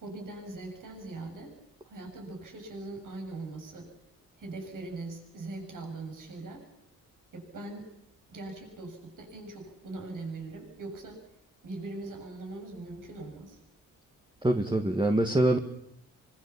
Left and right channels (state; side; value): normal; both; correlation 0.80